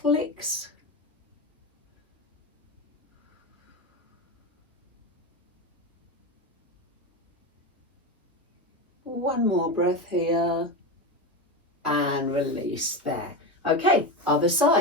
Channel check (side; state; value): both; normal; correlation 0.18